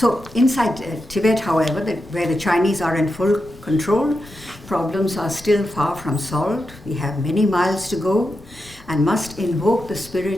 inside Tibet, however, where the Chinese are in full control, problems are still far from solved. We have many miles to go and must invoke the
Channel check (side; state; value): both; normal; correlation 0.88